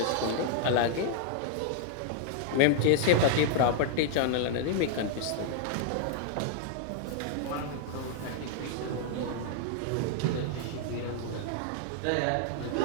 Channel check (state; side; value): different; both; correlation -0.01